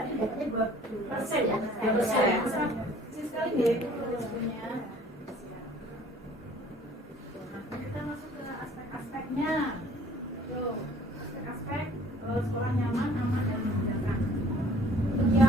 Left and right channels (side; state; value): both; normal; correlation 0.54